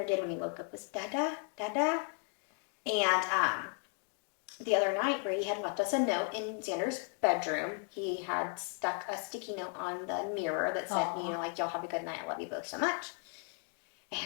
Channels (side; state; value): right; quieter; 39.8 dB